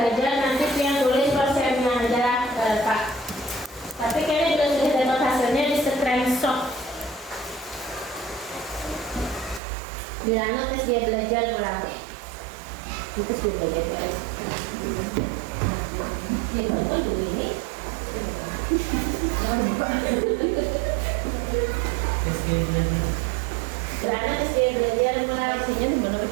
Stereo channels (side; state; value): left; drops out; at 9.6 s